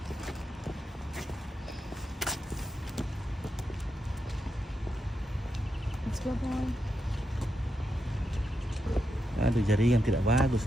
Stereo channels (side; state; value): both; normal; correlation 0.85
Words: aduh, jaringan tidak bagus